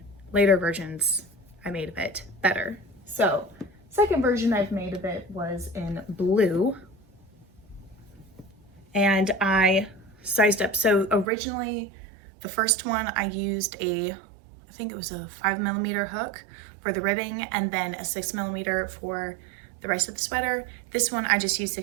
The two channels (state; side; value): drops out; left; at 11.2 s